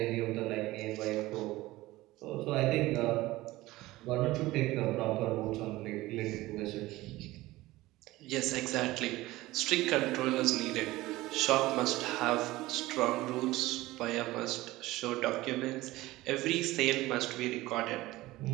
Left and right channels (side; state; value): left; quieter; 18.3 dB